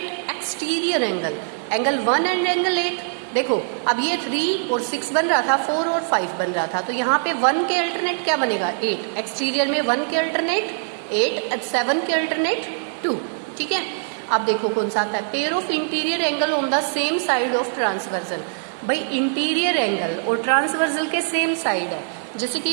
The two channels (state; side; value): silent; left; digital silence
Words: exterior angle, angle 1 and angle 8। देखो अब ये 3 और 6 बन रहा था, 4 और 5 बन रहा था, तो यहाँ पे 1 के अल्टरनेट क्या बनेगा, 8। एक्सटीरियर में 1 के अल्टरनेट 8, 7 के अल्टरनेट 2, ठीक है। अब देखो कौन सा आता है, pair of interior angle on the same side of transversal. भाई इंटीरियर एंगल और ट्रांसवर्जल के सेम साइड है, जैसे